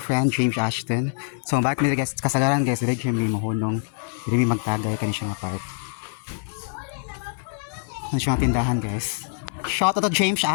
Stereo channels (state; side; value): silent; right; 56 dB below the other